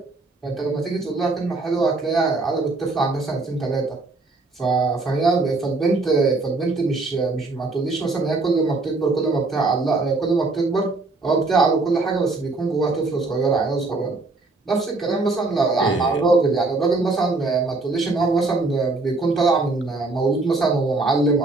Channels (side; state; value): left; quieter; 3.4 dB